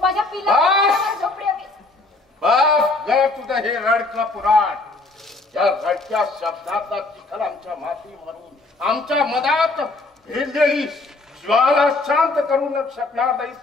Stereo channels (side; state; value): right; quieter; 3.2 dB